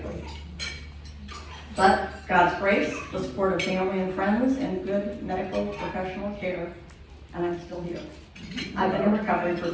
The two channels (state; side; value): identical; both; correlation 1.00